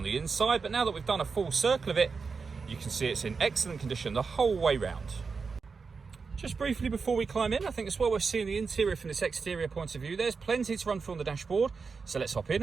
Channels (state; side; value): quieter; left; 5.0 dB